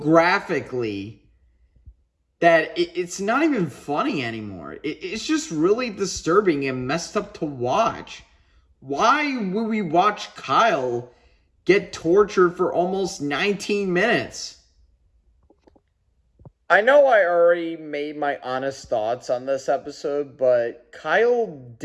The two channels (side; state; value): both; identical; correlation 1.00